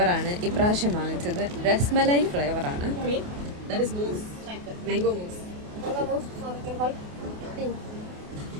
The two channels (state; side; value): late; left; 28 ms